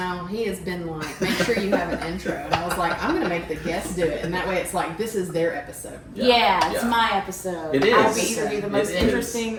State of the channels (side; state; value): both; identical; correlation 1.00